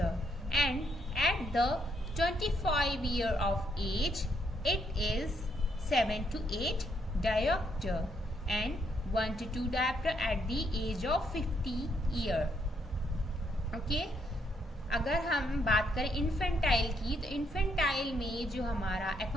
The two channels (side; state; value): both; normal; correlation 0.74